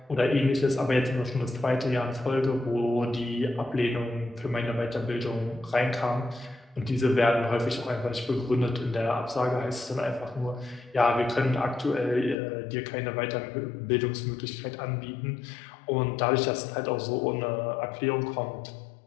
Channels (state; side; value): drops out; right; at 12.4 s